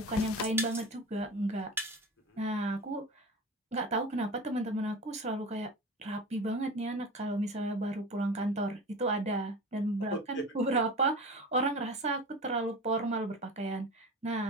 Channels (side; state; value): both; normal; correlation 0.32